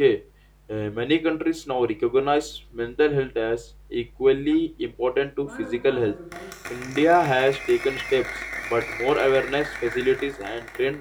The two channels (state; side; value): identical; both; correlation 1.00